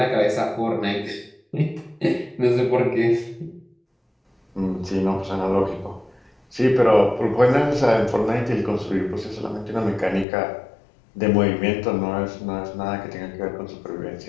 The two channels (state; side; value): drops out; right; at 10.2 s